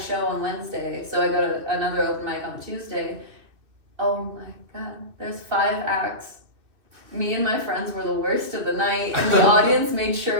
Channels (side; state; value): left; late; 2.6 ms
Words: show on Wednesday. So I go to another open mic on Tuesday. Oh my god, there's 5 acts. Me and my friends were the worst of the night, and the audience made